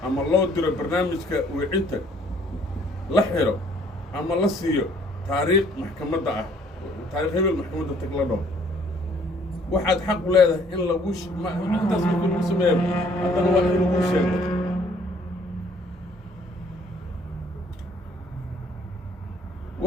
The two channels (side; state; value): both; normal; correlation 0.61